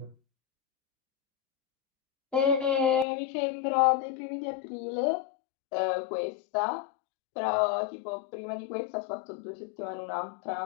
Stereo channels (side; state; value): right; drops out; at 3.1 s